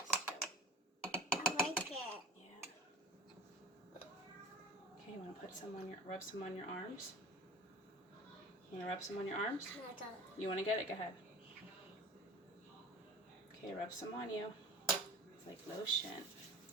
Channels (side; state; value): both; normal; correlation 0.39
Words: too. I like it. Yeah. Okay, you want to put some on rub some on your arms? You want to rub some on your arms? You want to get it? Go ahead. Okay, rub some on you. It's like lotion.